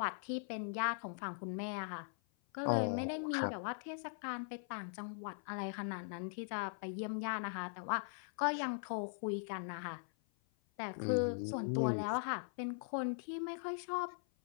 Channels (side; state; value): right; silent; 51 dB below the other